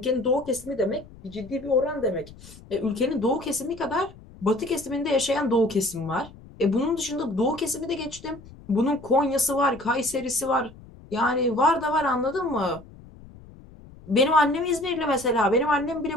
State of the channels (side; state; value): left; noise; rumble, 20 dB below the sound